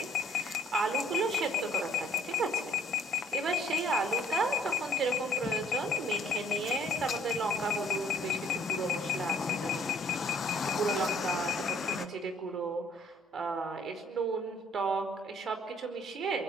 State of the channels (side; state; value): both; normal; correlation 0.60